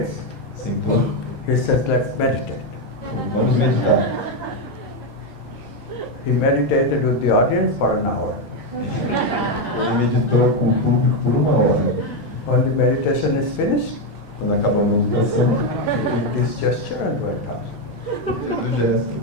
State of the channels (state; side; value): normal; both; correlation 0.06